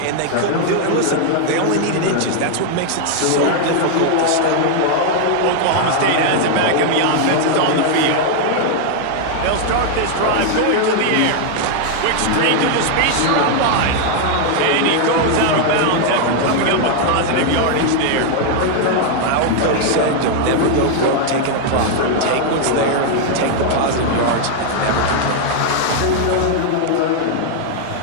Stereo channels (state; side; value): different; both; correlation 0.00